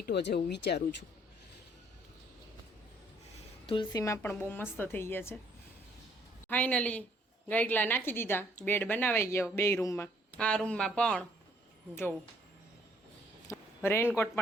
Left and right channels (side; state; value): both; normal; correlation 0.64